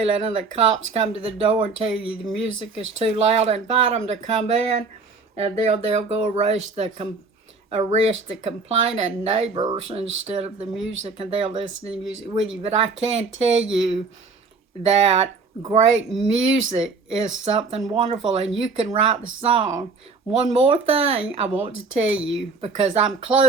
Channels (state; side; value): quieter; left; 4.3 dB